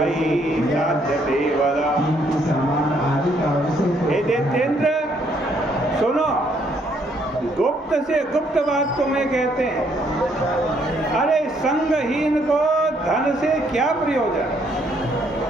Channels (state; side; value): normal; both; correlation 0.69